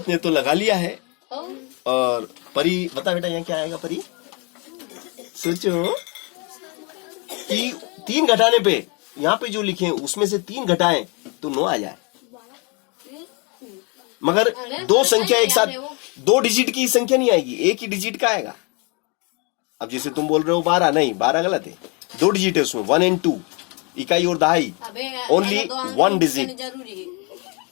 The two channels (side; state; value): right; quieter; 31.9 dB